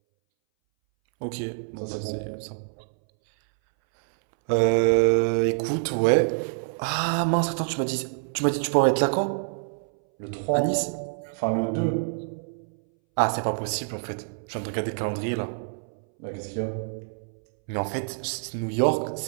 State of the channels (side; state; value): left; silent; 61 dB below the other